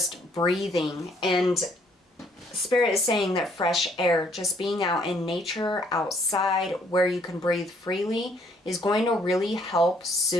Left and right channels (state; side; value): normal; both; correlation 0.65